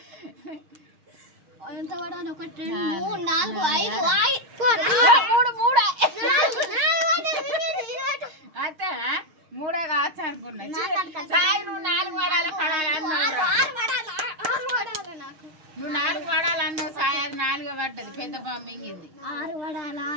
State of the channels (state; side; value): late; left; 6.5 ms